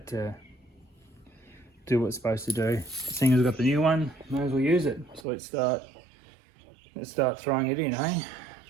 to do what it's supposed to do. Seeing as we've got the new one, might as well use it. So let's start throwing it in, eh?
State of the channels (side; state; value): left; drops out; at 5.2 s